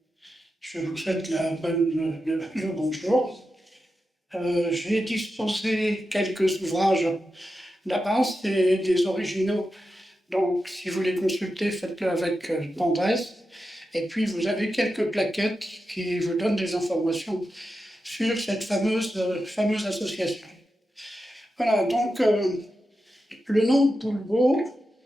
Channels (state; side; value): normal; both; correlation 0.90